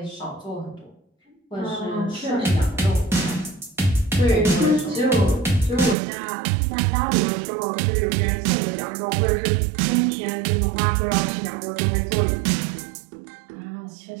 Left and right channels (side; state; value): left; drops out; at 6.0 s